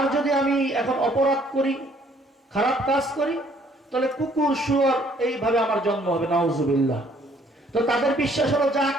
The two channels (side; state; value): both; normal; correlation 0.62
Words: যদি আমি এখন অপরাধ করি, খারাপ কাজ করি, তাহলে কুকুর শুয়োর এইভাবে আমার জন্ম হবে। নাউজুবিল্লাহ। তো তাদের বিশ্বাস হলো যা